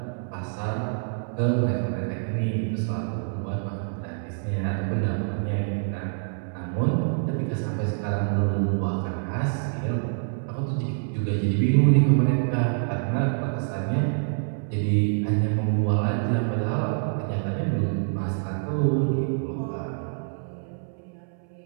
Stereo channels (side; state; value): left; silent; 61 dB below the other